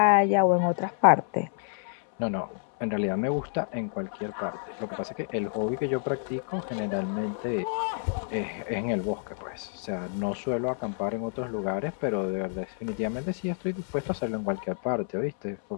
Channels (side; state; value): right; silent; 59 dB below the other